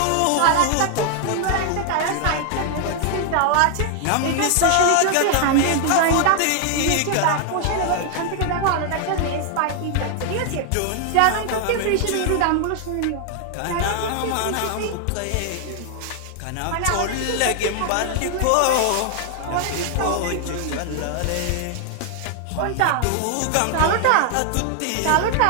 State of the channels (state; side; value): different; both; correlation 0.00